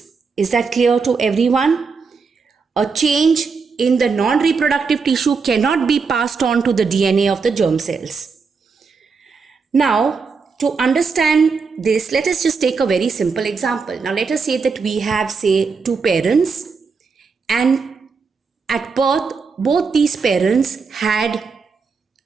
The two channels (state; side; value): quieter; left; 5.0 dB